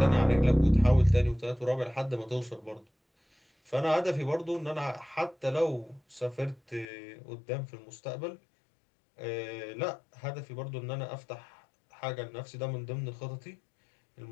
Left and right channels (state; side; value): drops out; right; at 6.9 s